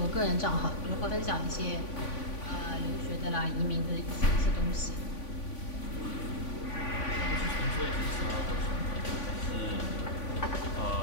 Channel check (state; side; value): late; right; 3.5 ms